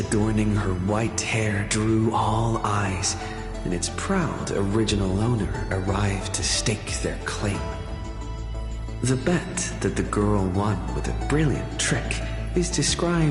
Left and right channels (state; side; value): identical; both; correlation 1.00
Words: her white hair drew all eyes, and its proud original owner arrived to stake their claim. The bet that the girl won with a brilliant trick is